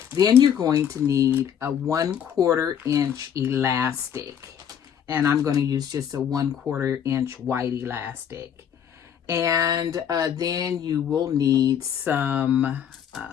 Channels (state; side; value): quieter; right; 8.7 dB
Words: Then you're going to need a 1/4 inch elastic, and I'm going to use just a 1/4 inch white elastic. And then you will need some